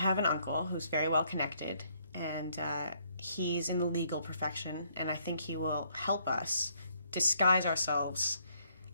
an uncle who's very well connected, and he's in the legal profession, and I think he will help us disguise ourselves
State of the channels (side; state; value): both; inverted; correlation -0.69